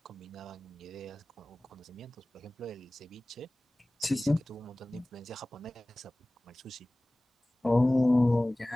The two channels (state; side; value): normal; both; correlation 0.98